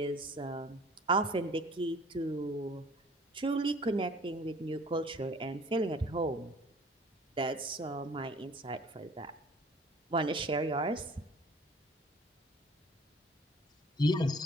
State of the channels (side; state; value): both; normal; correlation 0.51